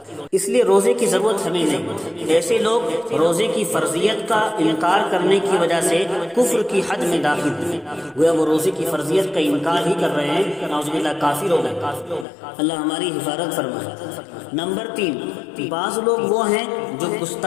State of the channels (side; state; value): right; drops out; at 12.2 s